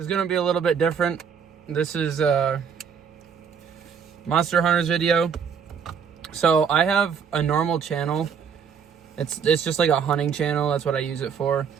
going to be a little bit different. This is a Monster Hunters video. So I have a normal channel. It's just like a hunting channel. That's what I use it for.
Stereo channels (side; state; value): left; quieter; 6.9 dB